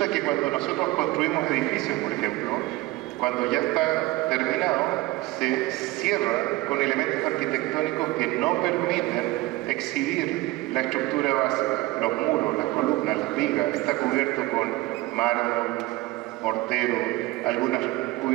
que cuando nosotros construimos edificios, por ejemplo, cuando ya está terminado, se cierra con elementos arquitectónicos que no permiten exhibir la estructura básica, los muros, las columnas, las vigas, está cubierto con mármol, mortero, algunas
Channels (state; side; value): quieter; left; 19.5 dB